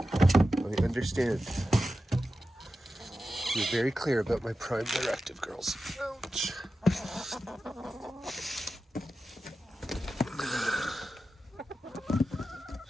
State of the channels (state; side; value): normal; both; correlation 0.92